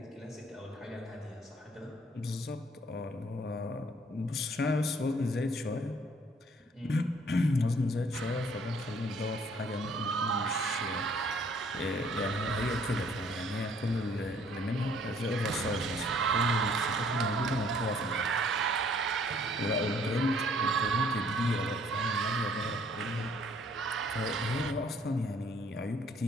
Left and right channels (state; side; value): normal; both; correlation 0.61